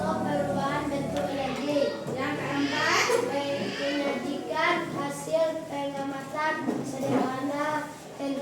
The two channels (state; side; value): identical; both; correlation 1.00